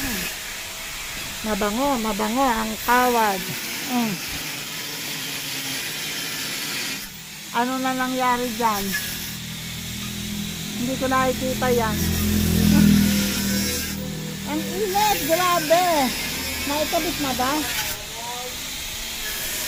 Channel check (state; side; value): identical; both; correlation 1.00